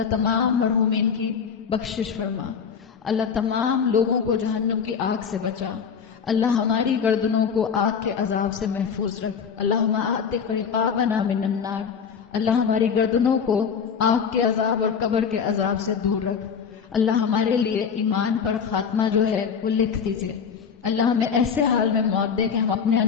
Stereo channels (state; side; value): quieter; right; 6.6 dB